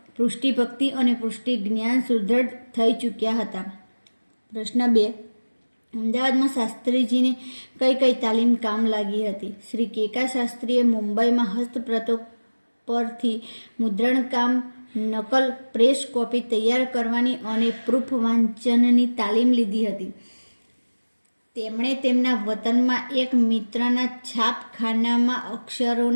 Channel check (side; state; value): both; inverted; correlation -1.00